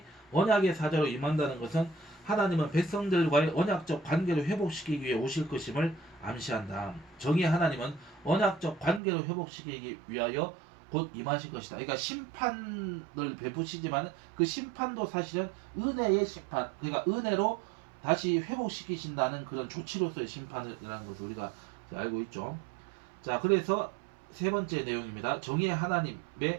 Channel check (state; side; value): drops out; left; at 9.0 s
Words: 언약의 사자로 임한다는 것은 하나님은 백성들과의 언약적 관계를 회복시키기 위해 오실 것임을 암시한다. 정의의 하나님은 언약적 관계를 회복시키기 위하여 곧 임하실 것이다. 그러니까 심판을 베푸시지만 그 심판도 사실은 은혜의 심판, 그러니까 은혜로 다시 회복시키신다는 그런 조치로서의 심판이라는 것을 우리가 알고 있죠. 자, 그래서 세 번째 내용입니다. 정의의